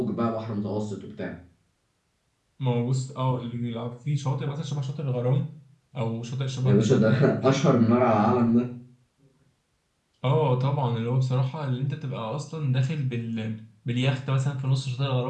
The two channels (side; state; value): both; identical; correlation 1.00